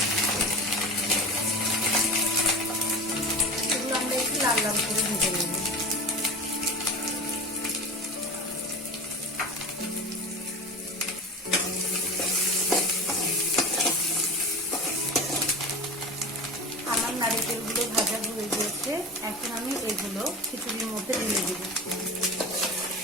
এগুলো আমরা একটু লাল লাল করে ভেজে নেব। আমার নারকেলগুলো ভাজা হয়ে গিয়েছে। এখন আমি এগুলো খিচুড়ির মধ্যে ঢেলে দেব।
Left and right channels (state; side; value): normal; both; correlation 0.31